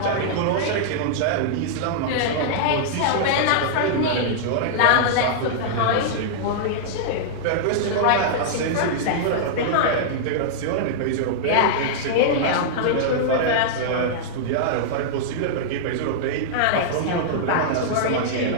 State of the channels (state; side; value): different; both; correlation -0.02